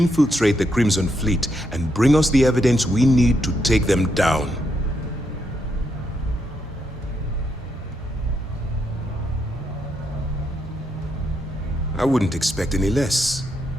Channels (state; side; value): normal; both; correlation 0.79